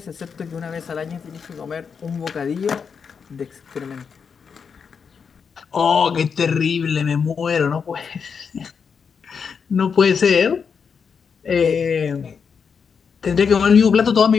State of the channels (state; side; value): quieter; right; 6.2 dB